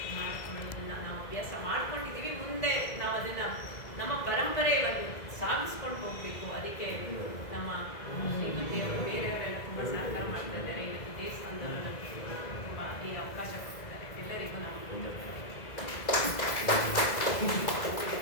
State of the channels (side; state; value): right; late; 2.0 ms